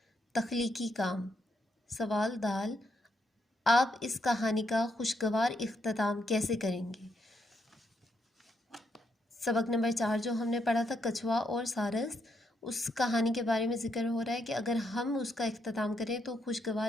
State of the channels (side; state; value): both; normal; correlation 0.78